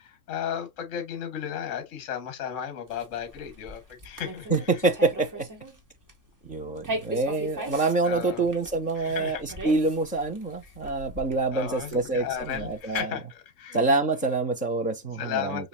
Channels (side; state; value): right; late; 3.7 ms